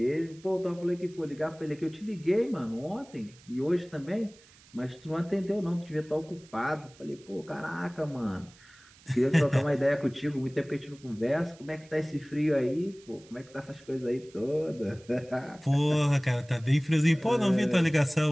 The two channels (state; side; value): noise; right; hiss, 25 dB below the sound